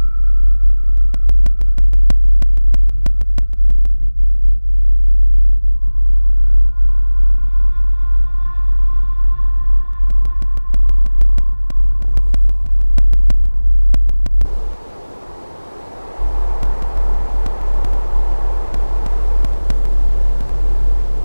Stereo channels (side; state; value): both; inverted; correlation -1.00